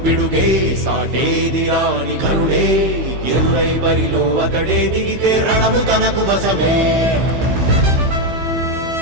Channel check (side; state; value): left; late; 15 ms